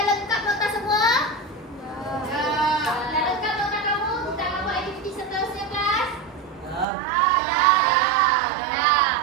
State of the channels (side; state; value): left; drops out; at 6.9 s